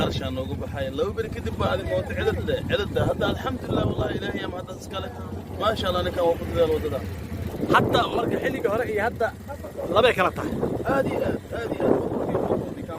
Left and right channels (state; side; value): identical; both; correlation 1.00